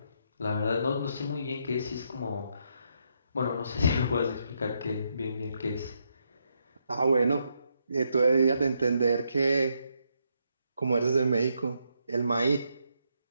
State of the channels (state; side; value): inverted; both; correlation -0.78